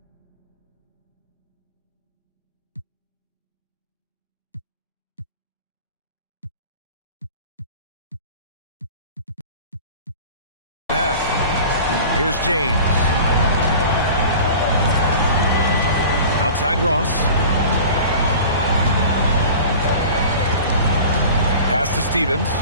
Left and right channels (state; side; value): inverted; both; correlation -0.40